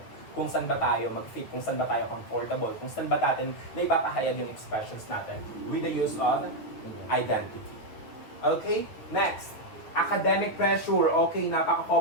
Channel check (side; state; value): right; late; 9.0 ms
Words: Kung saan ba tayo mag-fit, kung saan ba tayo comfortable, kung saan ba natin na ipapahayag yung expressions natin with the use of identity. Okay? Next. Academic pressure. Okay,